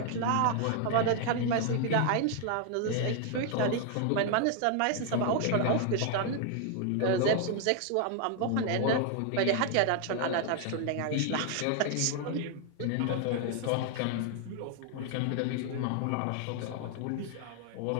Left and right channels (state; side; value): different; both; correlation 0.00